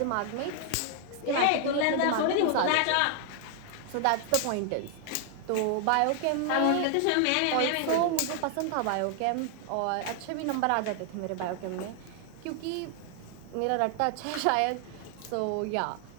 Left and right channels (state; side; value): different; both; correlation 0.00